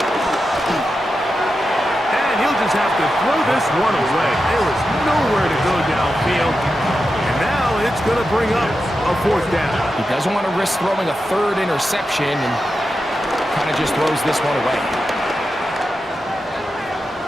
He'll just have to throw this one away. There was nowhere to go downfield. And now it's going to bring up a 4th down. He doesn't want to risk throwing a 3rd interception and kind of just throws this one away.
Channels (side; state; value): both; normal; correlation 0.89